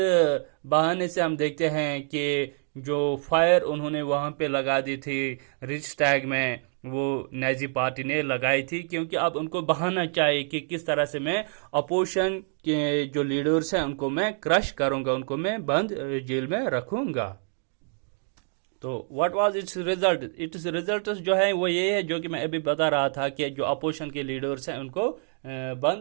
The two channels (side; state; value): left; silent; 59 dB below the other